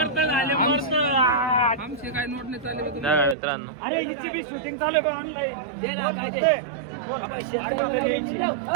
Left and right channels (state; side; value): drops out; left; at 3.4 s